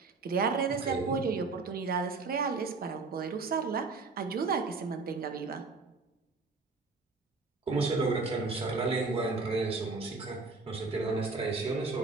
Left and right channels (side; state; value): left; quieter; 4.1 dB